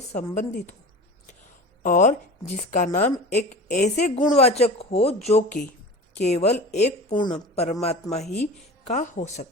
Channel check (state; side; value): normal; both; correlation 0.34